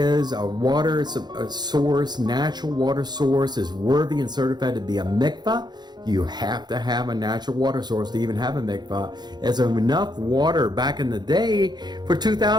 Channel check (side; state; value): left; late; 0.21 ms